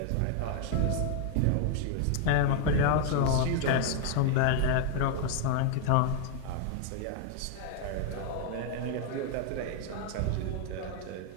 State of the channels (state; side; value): different; both; correlation 0.00